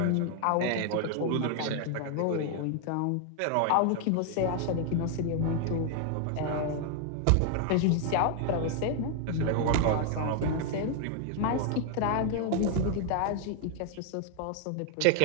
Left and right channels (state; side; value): different; both; correlation 0.00